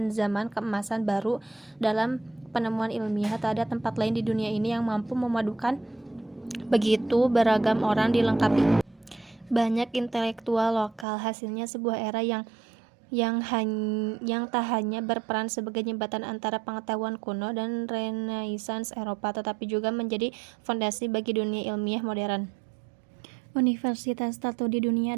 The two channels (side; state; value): left; drops out; at 11.1 s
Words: zaman keemasan baru dalam penemuan ilmiah. Tak ada tempat lain di dunia ini yang mampu memadukan begitu beragam orang dilengkapi banyak intelektual lokal. Hasilnya sebuah era yang tak hanya berperan sebagai jembatan antara pengetahuan kuno dan Renaissance Eropa, tetapi juga menjadi fondasi bagi dunia ilmiah modern. Universitas tertua di